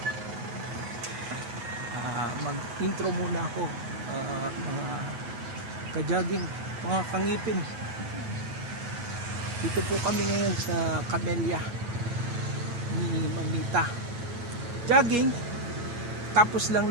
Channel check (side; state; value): left; late; 9.2 ms